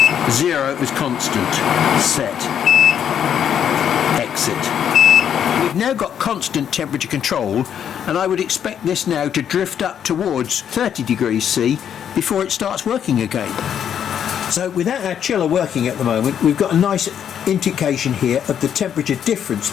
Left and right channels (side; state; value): right; quieter; 8.9 dB